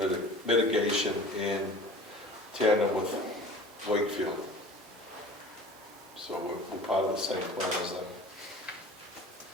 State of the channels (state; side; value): normal; both; correlation 0.42